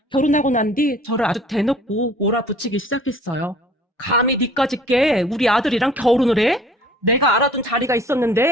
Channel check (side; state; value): both; normal; correlation 0.51